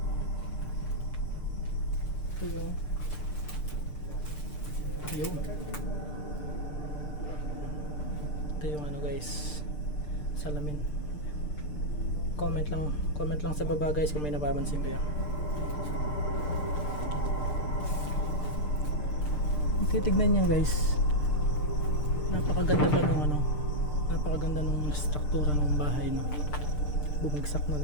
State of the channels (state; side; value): late; right; 6.7 ms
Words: Ito yung yun. Ito yung ano guys, salamin. Comment lang sa baba guys kung may napapansin kayo. Titignan niyo guys, napakaganda pa nung ano, napakaganda nung struktura ng bahay, no. Bumagsak na